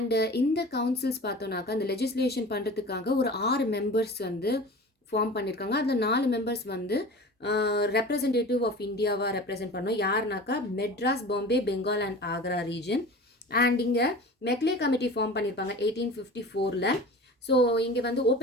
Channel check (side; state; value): both; normal; correlation 0.37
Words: இந்த கவுன்சில்ஸ் பார்த்தோன்னாக்கா அந்த லெஜிஸ்லேஷன் பண்ணுறதுக்காக ஒரு 6 மெம்பர்ஸ் வந்து ஃபார்ம் பண்ணியிருக்காங்க. அதில் 4 மெம்பர்ஸ் வந்து ரெப்ரசன்டேட்டிவ் ஆஃப் இந்தியாவாக ரெப்ரசென்ட் பண்ணோம். யாருனாக்கா Madras, Bombay, Bengal and Agra region. And இங்கே மெக்லே கமிட்டி ஃபார்ம் பண்ணியிருப்பாங்க 1854. ஸோ இங்கே வந்து